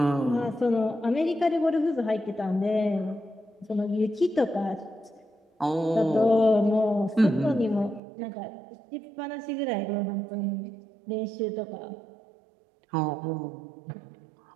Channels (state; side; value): drops out; left; at 8.0 s